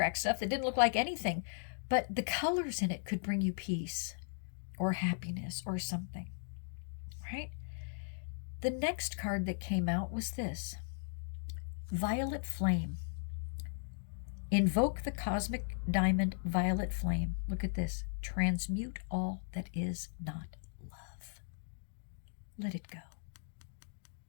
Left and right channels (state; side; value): silent; right; digital silence